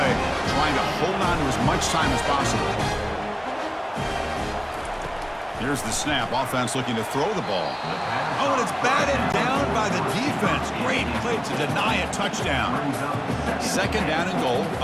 trying to hold on to as much time as possible. Here's the snap. Offense looking to throw the ball. Oh, and it's batted down by the defense. Great play to deny a touchdown. Second down and goal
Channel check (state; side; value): identical; both; correlation 1.00